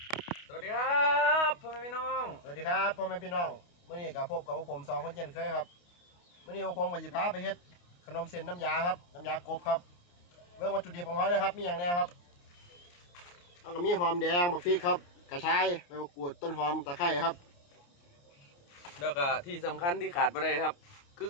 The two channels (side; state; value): right; late; 29 ms